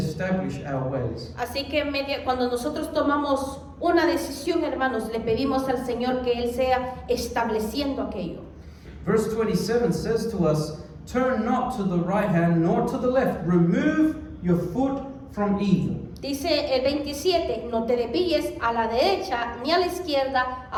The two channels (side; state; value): both; identical; correlation 1.00